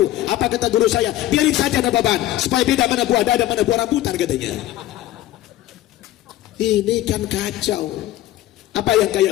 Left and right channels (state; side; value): quieter; right; 14.5 dB